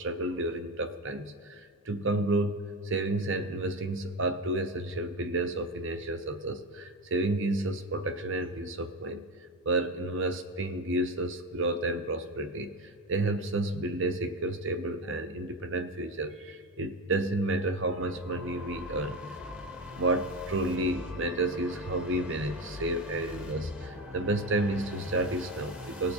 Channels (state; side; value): normal; both; correlation 0.20